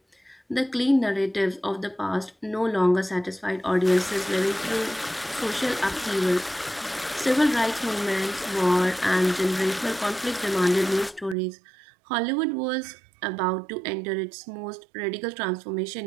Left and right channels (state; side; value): drops out; left; at 11.4 s